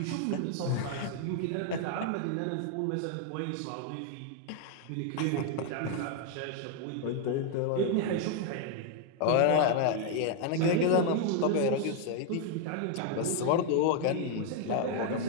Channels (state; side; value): different; both; correlation 0.00